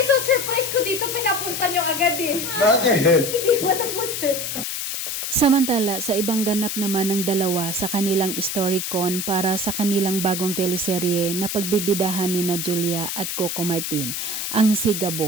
ko dito, pinapunta niyo agad eh. Bakit? Hindi ba tapos eh? Samantala, sa ibang ganap naman ng dalawa sa kanilang Storycon para sa kanilang bagong teleserye na pagbibidahan ni na Julia at Coco Martin, ang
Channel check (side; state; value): left; noise; hiss, 3 dB below the sound